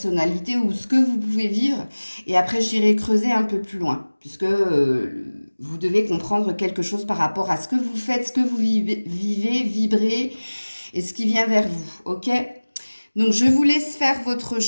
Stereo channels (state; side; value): inverted; both; correlation -1.00